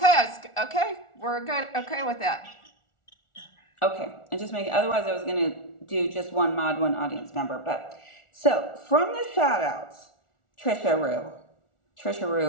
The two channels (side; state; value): right; late; 1.4 ms